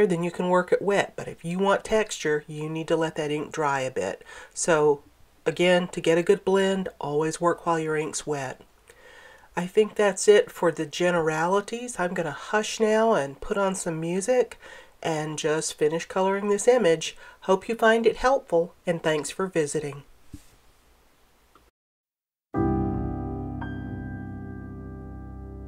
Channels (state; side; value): identical; both; correlation 1.00